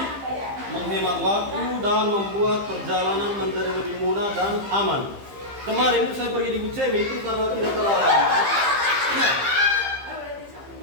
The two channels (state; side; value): late; left; 15 ms